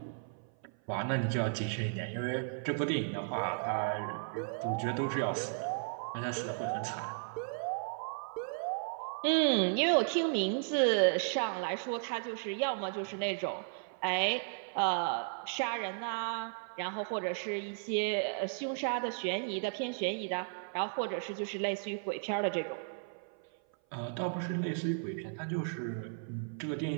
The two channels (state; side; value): silent; left; 54 dB below the other